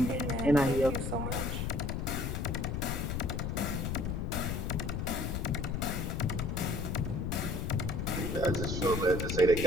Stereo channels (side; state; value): left; noise; rumble, 1 dB below the sound